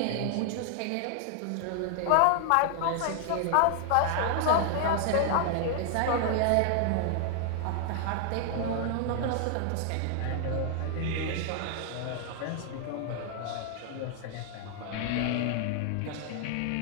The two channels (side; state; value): both; different; correlation 0.00